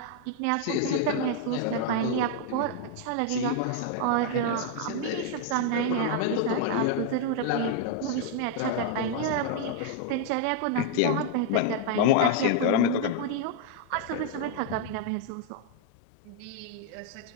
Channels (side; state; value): both; different; correlation 0.00